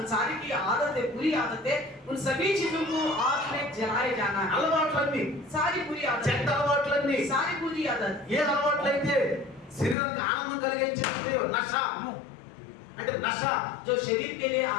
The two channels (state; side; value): drops out; right; at 10.0 s